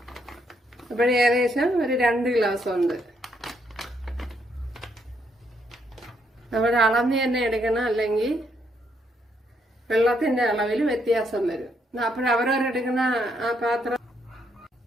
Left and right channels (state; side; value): normal; both; correlation 0.74